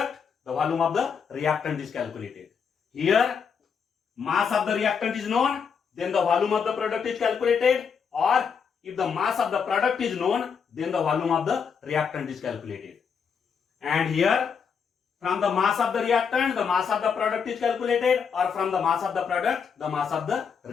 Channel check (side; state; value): right; quieter; 6.5 dB